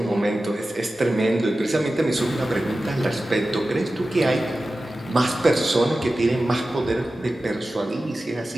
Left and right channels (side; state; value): both; normal; correlation 0.94